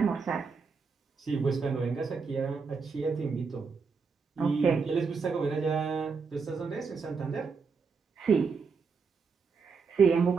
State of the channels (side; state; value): left; quieter; 5.1 dB